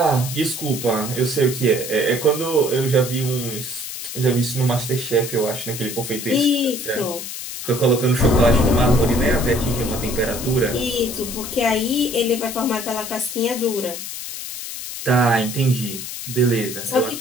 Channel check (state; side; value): noise; left; hiss, 8 dB below the sound